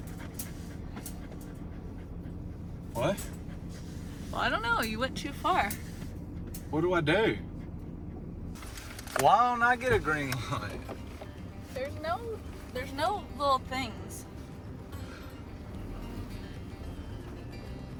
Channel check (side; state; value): both; identical; correlation 1.00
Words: What? Well, I don't know. You went too far. What do I do? Why don't I get a green light? There's no little things.